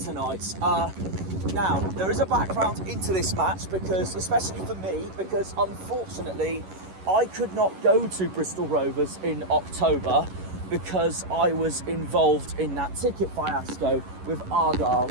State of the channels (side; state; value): left; late; 11 ms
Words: Now, there is a background into this match, because, especially for me, because unfortunately, I could not go to Bristol Rovers in October because I was involved in that ticket fiasco with Argyle,